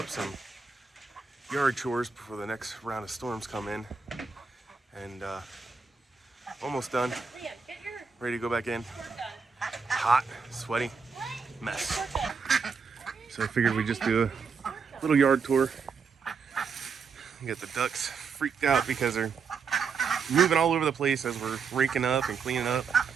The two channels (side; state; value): left; quieter; 5.5 dB